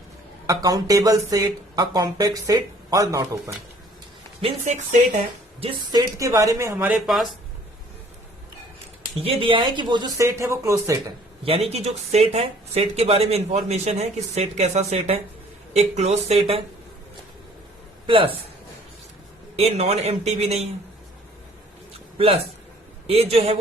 countable set, a compact set or not open. Means एक set है जिस set के बारे में हमारे पास ये दिया है कि वो जो सेट है वो क्लोज सेट है. यानी कि जो सेट है, सेट के बारे में इंफॉर्मेशन है कि सेट कैसा सेट है, एक क्लोज सेट है, प्लस ए नॉन एम्प्टी भी नहीं है, प्लस ए जो है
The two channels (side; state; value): both; normal; correlation 0.56